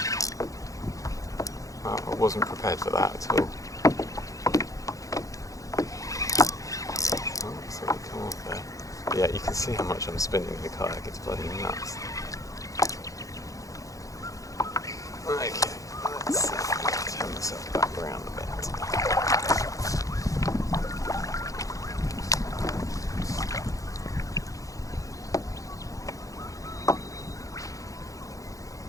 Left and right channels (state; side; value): late; right; 0.16 ms